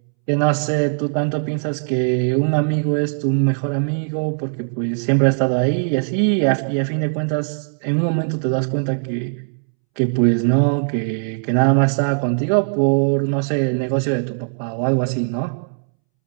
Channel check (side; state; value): left; silent; 66 dB below the other